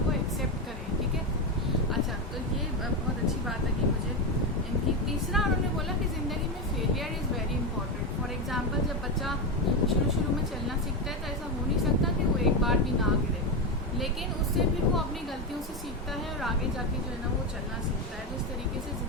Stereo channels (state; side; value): normal; both; correlation 0.12